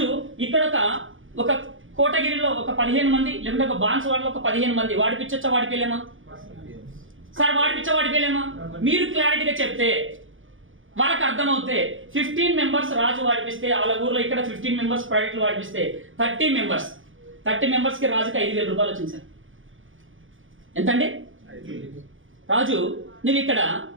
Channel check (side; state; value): left; late; 0.58 ms